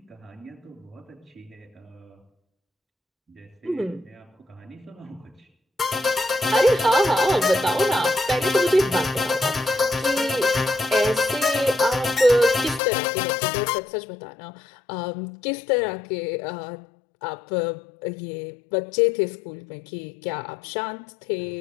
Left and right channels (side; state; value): right; drops out; at 12.8 s